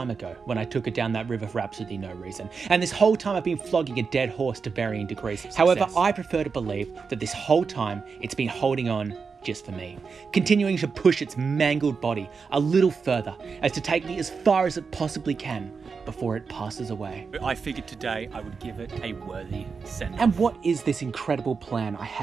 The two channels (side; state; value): left; quieter; 5.2 dB